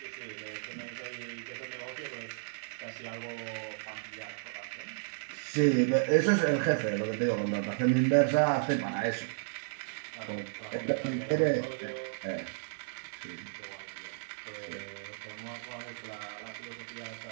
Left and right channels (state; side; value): silent; left; digital silence